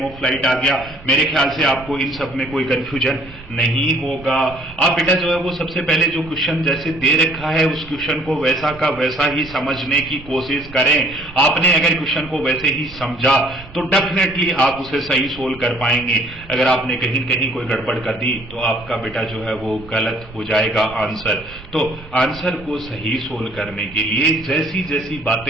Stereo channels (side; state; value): right; noise; rumble, 19 dB below the sound